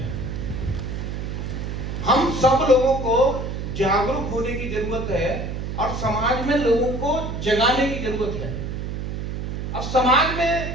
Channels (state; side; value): noise; right; hum, 5 dB below the sound